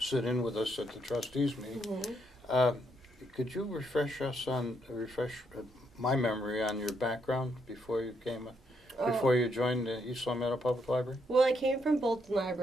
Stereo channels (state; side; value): normal; both; correlation 0.76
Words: in with us at the trustees meeting. Mm-hmm. Could you refresh my memory on your background before you joined the East Long Meadow Public Library? Well, I came from Bolton